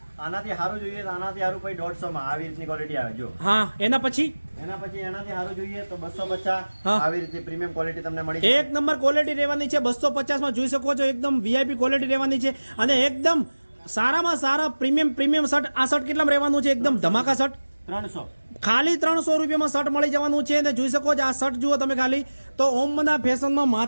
આનાથી સારું જોઈએ તો આનાથી સારું પછી 150 માં આવી રીતની ક્વોલિટી આવે. જો હા, એના પછી એનાથી સારું જોઈએ તો 250 આવી રીતે પ્રીમિયમ ક્વોલિટી તમને મળી જાય. એક નંબર ક્વોલિટી રહેવાની છે. 250 માં જોઈ શકો છો એકદમ વીઆઈપી ક્વોલિટી રહેવાની છે અને એકદમ સારામાં સારા પ્રીમિયમ શર્ટ. આ શર્ટ કેટલામાં રહેવાનું છે? એકદમ ધમાકા શર્ટ 300, ખાલી 300 રૂપિયામાં શર્ટ મળી જવાનું છે. અને જોઈ શકો છો આ શર્ટ જુઓ તમે ખાલી. તો ઓમબના ફેશનમાં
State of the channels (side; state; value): both; inverted; correlation -1.00